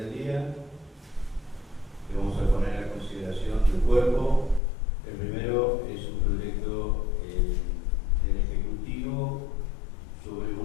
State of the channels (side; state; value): right; drops out; at 4.6 s